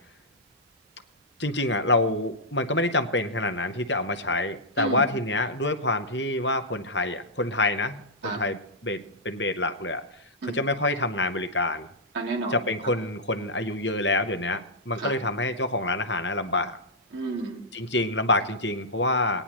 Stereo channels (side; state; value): both; normal; correlation -0.10